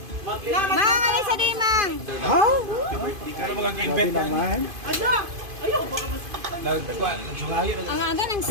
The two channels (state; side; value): late; left; 2.5 ms